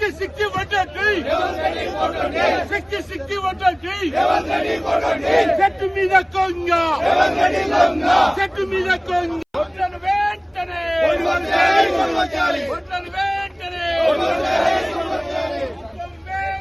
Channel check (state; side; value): identical; both; correlation 1.00